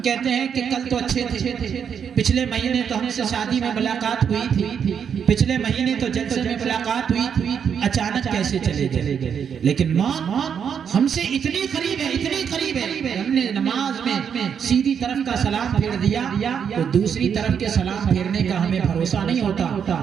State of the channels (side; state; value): left; quieter; 7.5 dB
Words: کہتے ہیں کہ کل تو اچھے تھے، پچھلے مہینے تو ہم سے شادی میں ملاقات ہوئی تھی، پچھلے مہینے تو جلسے میں ملاقات ہوئی تھی، اچانک کیسے چلے گئے؟ لیکن موت ہم سے اتنی قریب ہے، اتنی قریب ہے، ہم نے نماز میں سیدھی طرف کا سلام پھیر دیا تو دوسری طرف کے سلام پھیرنے کا ہمیں بھروسہ نہیں ہوتا،